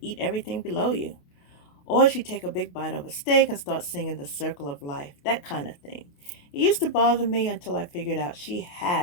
eat everything below you? Or she'd take a big bite of a steak and start singing The Circle of Life, that kind of thing. It used to bother me until I figured out she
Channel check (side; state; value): right; late; 28 ms